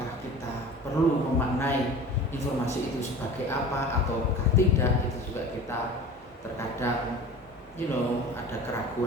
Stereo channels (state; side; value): normal; both; correlation 0.38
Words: kita perlu memaknai informasi itu sebagai apa ataukah tidak, itu juga kita terkadang ada